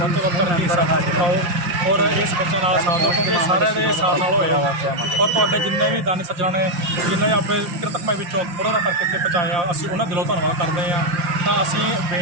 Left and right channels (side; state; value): left; late; 5.7 ms